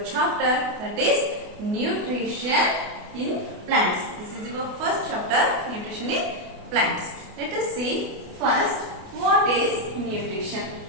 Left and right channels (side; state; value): left; late; 28 ms